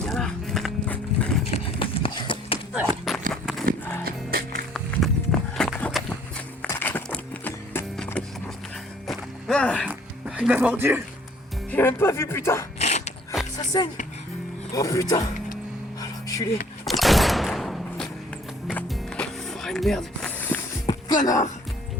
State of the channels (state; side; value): normal; both; correlation 0.58